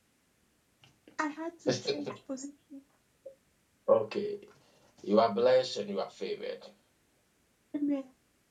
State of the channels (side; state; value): both; identical; correlation 1.00